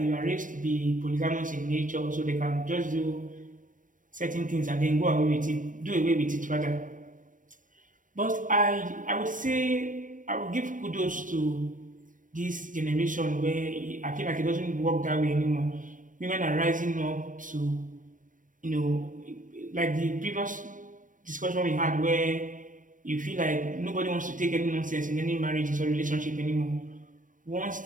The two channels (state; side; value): late; left; 0.38 ms